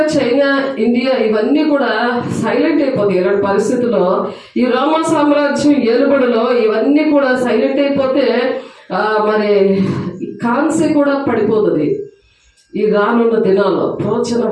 చైనా, ఇండియా ఇవన్నీ కూడా సైలెంట్ అయిపోతాయి ఇలాంటి పరిస్థితుల్లో. ఈ రోమా సామ్రాజ్యం ఏలుబడిలో ఇవన్నీ కూడా సైలెంట్ అయిపోతే మరి కాన్సే కూడా పడిపోతుంది. ఈ రానున్న దినాల్లో ప్రవచన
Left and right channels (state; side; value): identical; both; correlation 1.00